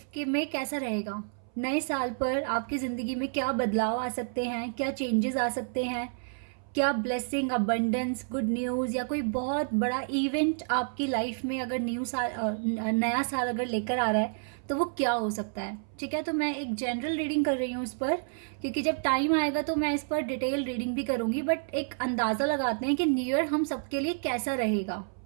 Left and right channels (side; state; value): left; silent; 58 dB below the other